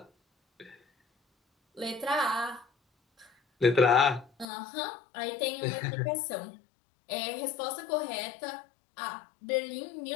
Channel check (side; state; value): right; drops out; at 4.5 s